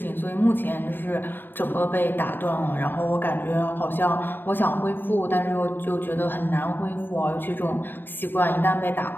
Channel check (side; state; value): right; late; 0.094 ms